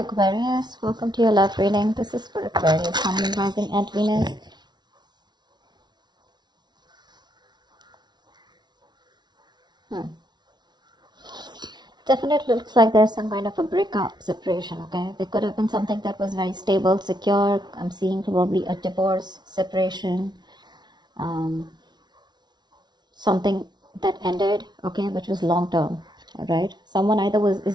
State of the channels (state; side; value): late; left; 0.20 ms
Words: Aquarius, welcome to your love reading. This is for Aquarius, Sun, Moon, Rising and Venus. Definitely looks like there's some kind of a breakup, separation, okay? There could have been something that was very stable, secure. I'm seeing probably a divorce, separation, something that ended, okay, which was long term, all right? Someone either